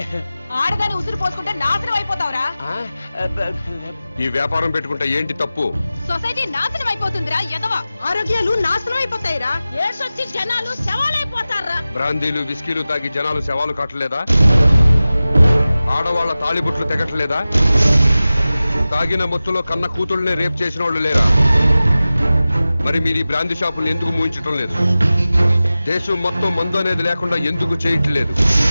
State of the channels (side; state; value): both; inverted; correlation -0.96